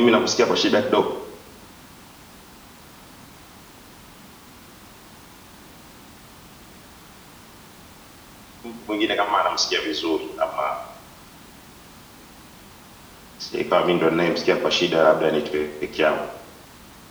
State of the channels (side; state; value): both; identical; correlation 1.00